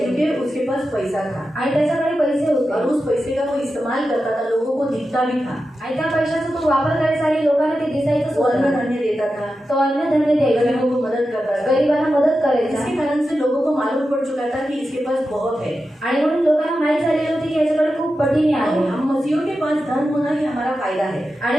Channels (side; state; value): both; normal; correlation 0.91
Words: क्योंकि उसके पास पैसा था आणि त्याच्याकडे पैसे और होते उस पैसे का वो इस्तेमाल करता था, लोगों को दिखता भी था। आणि त्या पैशाचा तो वापर करायचा आणि लोकांना ते दिसायचं वो अन्न होतं. धान्य देता था, तो अन्य धन्य द्यायचा, गरीबों को मदद करता था। गरिबांना मदत करायचा इसके कारण से लोगों को मालूम पड़ चुका था कि इसके पास बहुत है। आणि म्हणून लोकांना माहित झालेलं होती की याच्याकडे खूप पटीने तो आहे. हम मसीहों के पास धन होना ही हमारा फायदा है, आणि